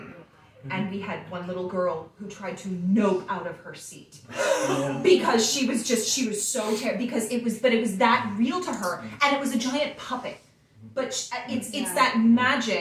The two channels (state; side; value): identical; both; correlation 1.00